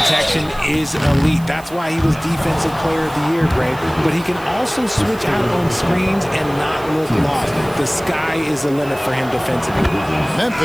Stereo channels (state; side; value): noise; right; hiss, 21 dB below the sound